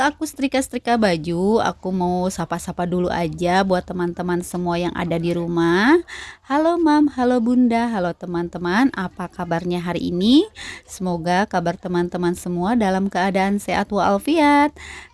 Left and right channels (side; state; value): both; identical; correlation 1.00